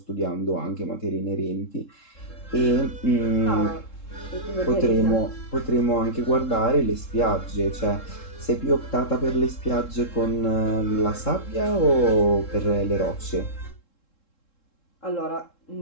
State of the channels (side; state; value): right; late; 3.7 ms